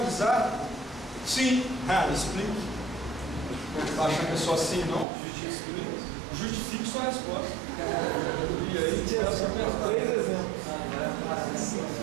Sim. Explique. Não está achando que é só assim, não? Justifique sua resposta. E aí, três exemplos.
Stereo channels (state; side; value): drops out; left; at 5.1 s